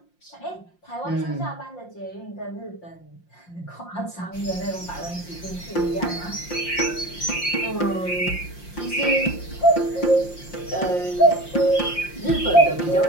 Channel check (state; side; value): late; right; 5.7 ms